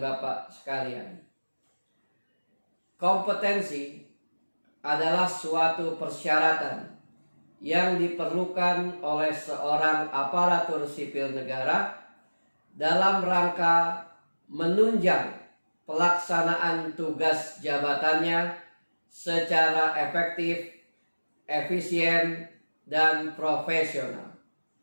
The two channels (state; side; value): inverted; both; correlation -1.00